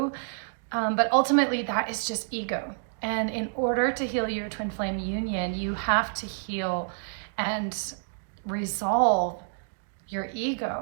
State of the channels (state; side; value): silent; left; digital silence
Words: But ultimately that is just ego. And in order to heal your twin flame union, you have to heal and resolve your